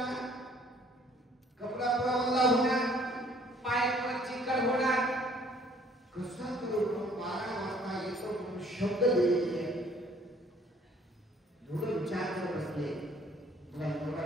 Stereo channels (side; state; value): both; normal; correlation 0.59